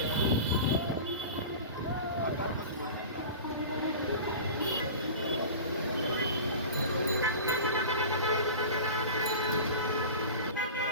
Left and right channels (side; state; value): both; inverted; correlation -0.34